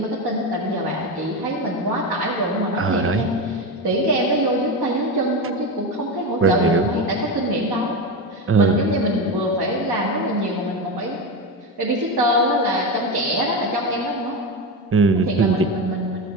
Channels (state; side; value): normal; both; correlation 0.17